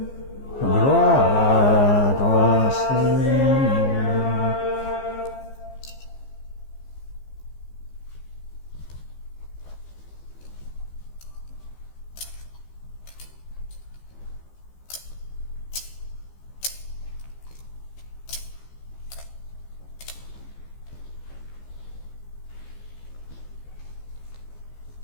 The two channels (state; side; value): late; right; 15 ms